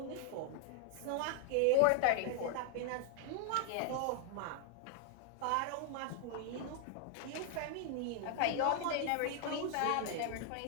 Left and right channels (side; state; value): both; different; correlation 0.00